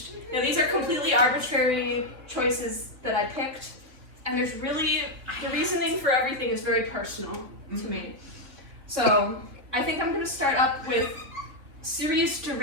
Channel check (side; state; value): left; late; 3.6 ms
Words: Now these are completely arbitrary choices that I picked, and there's really, the reasoning for everything is very personal to me. So I think I'm going to start up with serious